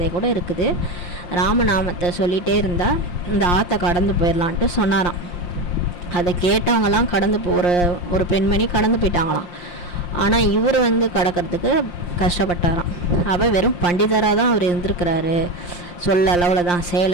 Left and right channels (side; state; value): right; late; 5.7 ms